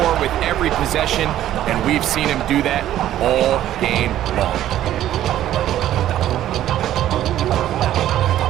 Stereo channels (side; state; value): left; quieter; 12.5 dB